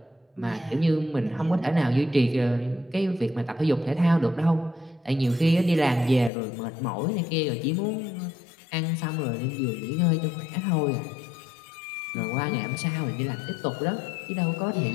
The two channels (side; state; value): right; drops out; at 6.3 s